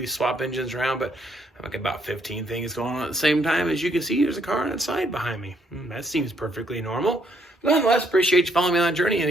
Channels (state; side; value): normal; both; correlation 0.71